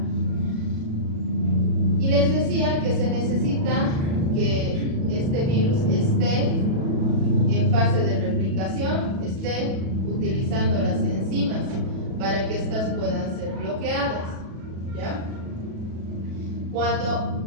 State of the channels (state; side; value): late; left; 37 ms